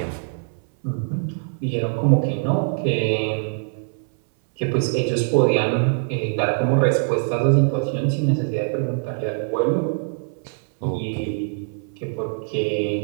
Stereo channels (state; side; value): silent; left; 61 dB below the other